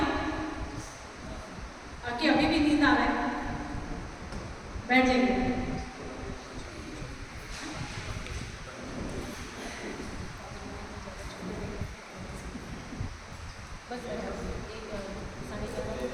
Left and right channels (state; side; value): identical; both; correlation 1.00